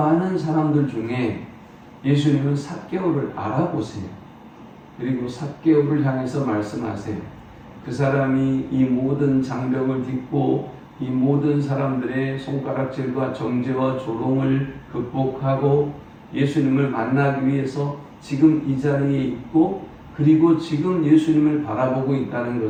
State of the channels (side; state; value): both; identical; correlation 1.00